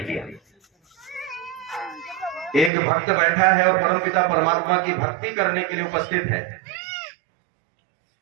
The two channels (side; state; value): left; drops out; at 2.7 s